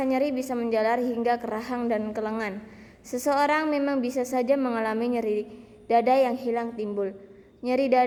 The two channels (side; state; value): both; identical; correlation 1.00